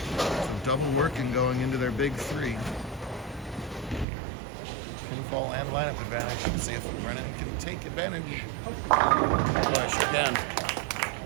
So double working going into their big 3. Pinfall and lineup advantage. Let's see if Brennan can take advantage. Push again.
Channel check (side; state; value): left; drops out; at 4.0 s